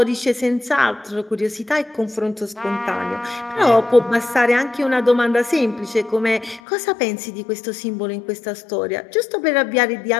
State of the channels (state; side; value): drops out; right; at 6.6 s